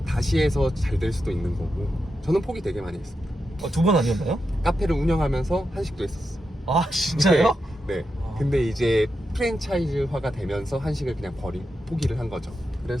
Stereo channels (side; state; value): both; normal; correlation 0.88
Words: 다시 해서 잘 될 수도 있는 거고. 저는 포기 되게 많이 했습니다. 2번 아니었나요? 카페를 운영하면서 한식도 했었어요. 아, 진짜요? 네. 아. 근데 이제 프랜차이즈화가 되면서 한식을 그냥 포기를 한 거죠.